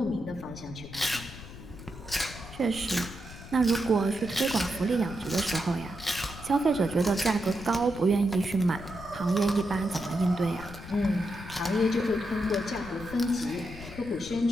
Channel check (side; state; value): left; noise; rumble, 14 dB below the sound